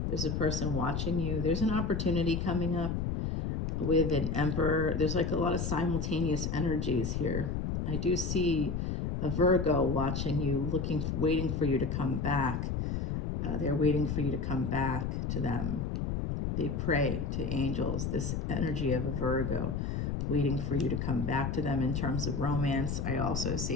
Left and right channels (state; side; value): noise; left; rumble, 1 dB below the sound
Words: There's a person watching you. There's an opportunity coming up with an Emperor. There's like a lot of simultaneous energies here. I do see a Virgo watching you, waiting for you to come back. They're waiting for you to come back to them. They pray to angels, this energy of a Virgo, waiting for you to come back to them in terms of romance. I also